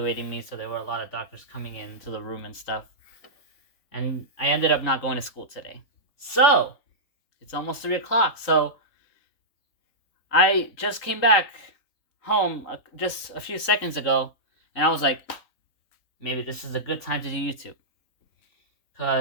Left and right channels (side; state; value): right; late; 3.8 ms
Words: me, so there were a lot of doctors coming into the room and stuff. And I ended up not going to school today. So, it's almost 3 o'clock, so I just came back home just a few seconds ago, and I was like, maybe this is a good time to do YouTube.